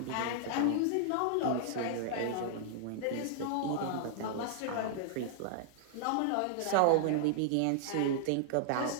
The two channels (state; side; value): different; both; correlation -0.01